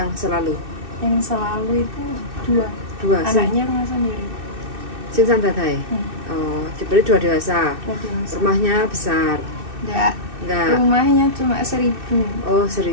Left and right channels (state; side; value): late; left; 2.6 ms